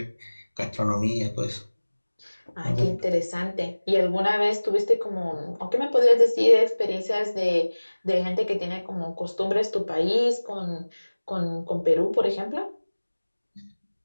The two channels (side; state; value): both; inverted; correlation -1.00